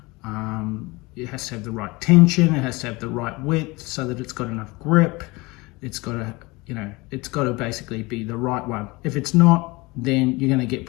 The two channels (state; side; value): quieter; right; 23.7 dB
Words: It has to have the right tension, it has to have the right width so that it's got enough grip. It's got to, it's got to basically be the right one. If it's not, then you're going to get